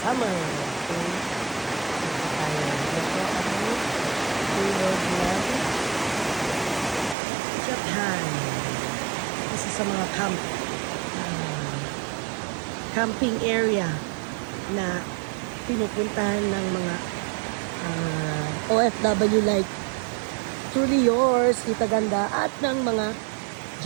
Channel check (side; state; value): left; drops out; at 7.2 s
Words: Okay. Ito ang tulog ng Japan. Isa sa mga camping area na pinupuntahan ng mga OFW like Truly Yours, Tita Ganda, at ng mga